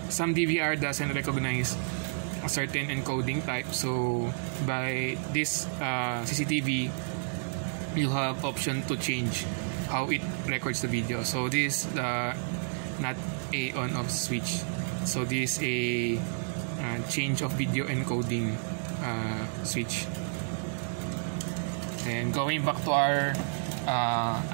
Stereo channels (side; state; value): left; silent; digital silence